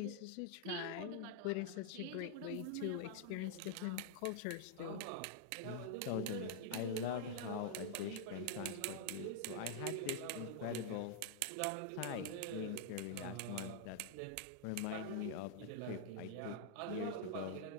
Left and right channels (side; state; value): both; different; correlation -0.01